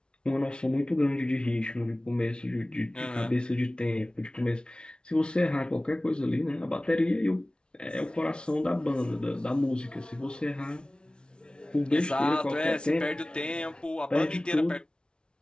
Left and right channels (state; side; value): late; right; 0.056 ms